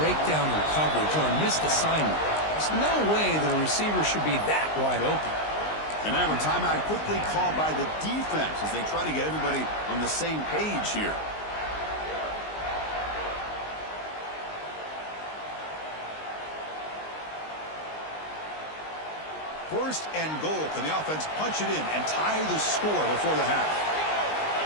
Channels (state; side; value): late; right; 19 ms